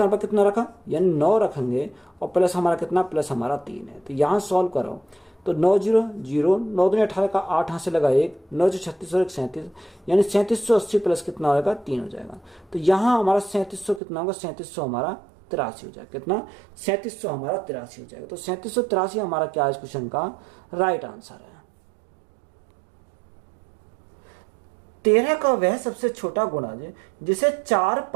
पर कितना रखा, यानी 9 रखेंगे और प्लस हमारा कितना, प्लस हमारा 3 है। तो यहाँ सॉल्व करो तो 9 0 0, 9 दूनी 18 का 8 यहाँ से लगा 1, 9 36 और 1 37, यानी 3780 प्लस कितना होगा 3 हो जाएगा। तो यहाँ हमारा 3700 कितना होगा, 3700 हमारा 83 हो जाएगा। कितना, 3700 हमारा 83 हो जाएगा। तो 3783 हमारा क्या है इस क्वेश्चन का राइट आंसर है। 13 का वह सबसे छोटा गुणज जिसे 4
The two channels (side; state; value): left; drops out; at 14.0 s